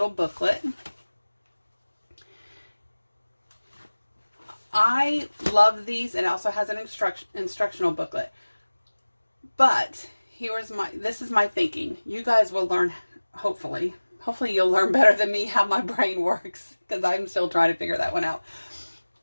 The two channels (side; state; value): both; inverted; correlation -1.00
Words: booklet. I love these. It also has an instructional booklet. But this is my thinking. You guys will learn, hopefully you'll learn better than me how my brain works, because I'm still trying to figure that one out.